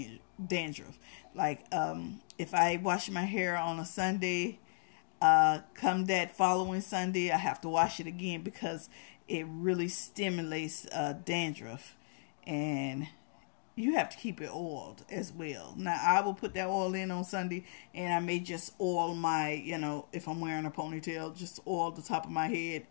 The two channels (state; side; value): silent; right; digital silence